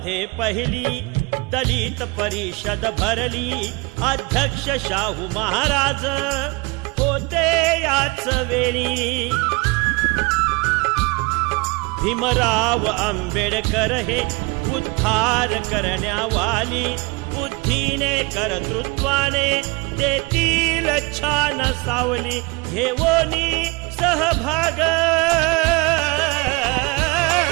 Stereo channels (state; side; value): quieter; left; 26.8 dB